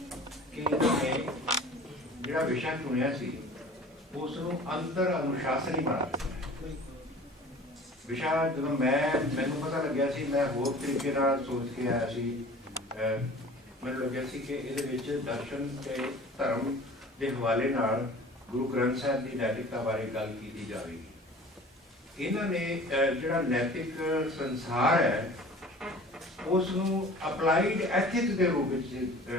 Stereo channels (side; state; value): both; normal; correlation 0.44